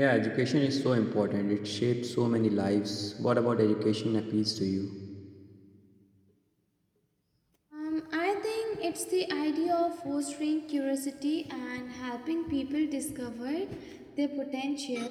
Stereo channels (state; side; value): identical; both; correlation 1.00